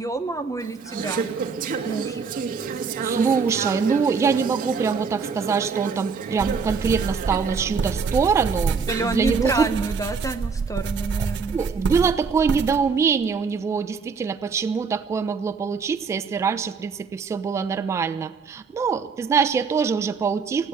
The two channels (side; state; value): left; quieter; 5.3 dB